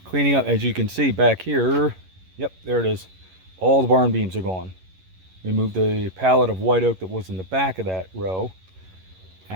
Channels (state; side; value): late; left; 11 ms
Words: cleaning up, as you can see back here. Yep, there it is. All the barn beams are gone. We moved the pallet of white oak that was in the back of that row